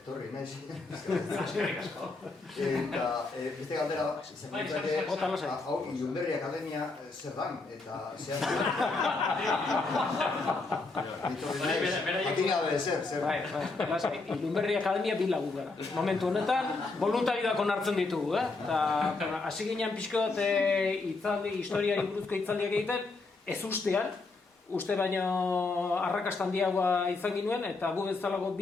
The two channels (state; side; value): quieter; right; 3.6 dB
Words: etorri naiz. Eskerrik asko. Eta beste galdera, hau Ilunberri Akademia zer dan, eta zehaztu. Atin gabe zer. Ilunberri Akademia bi lagu gara. Momentu honetan, voluntariak onartzen ditugu, eta hasi ginen pixko bat historiari buruzko hitzaldiak egiten, ez ustean, uste baino arrakasta handiagoa izan ginuen, eta gu bezalago